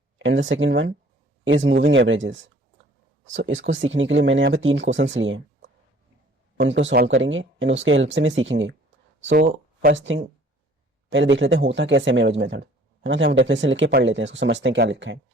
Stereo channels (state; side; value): normal; both; correlation 0.54